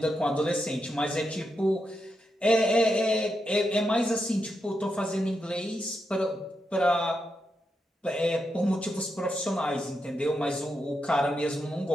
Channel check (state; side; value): normal; both; correlation 0.85